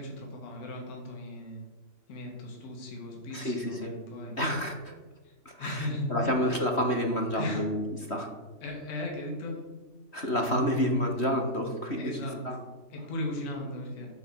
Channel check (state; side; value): late; right; 3.1 ms